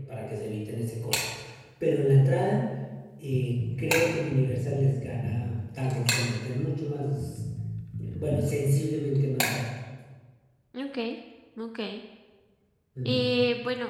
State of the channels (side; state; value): both; identical; correlation 1.00